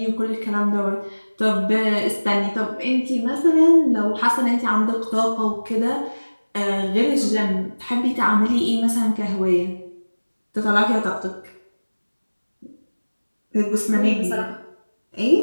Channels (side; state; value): both; inverted; correlation -1.00